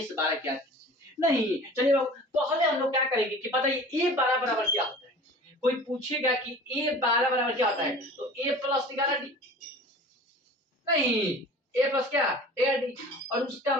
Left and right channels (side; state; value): both; normal; correlation 0.42